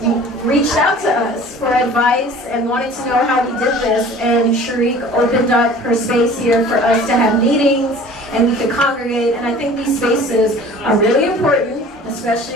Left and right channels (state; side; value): normal; both; correlation 0.45